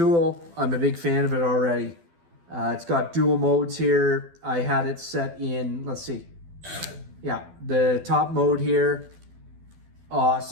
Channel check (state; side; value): late; left; 12 ms